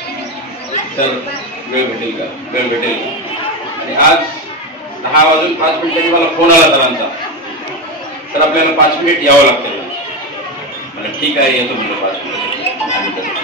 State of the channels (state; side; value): normal; both; correlation 0.15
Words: सर वेळ भेटेल का, वेळ भेटेल का. आणि आज 10 वाजून 5 मिनिटांनी मला फोन आला सरांचा, तर आपल्याला 5 मिनिट यावं लागतं. मला ठीक आहे येतो म्हणलं 5 मिनिट.